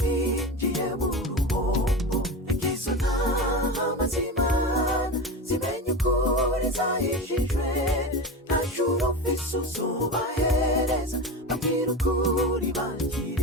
binjiye mu ruhombo. Izo ntama z'Imana zimenye ukuri zahishijwe, nta juru ufise uzobahereza babwira ukuri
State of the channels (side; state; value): both; normal; correlation 0.25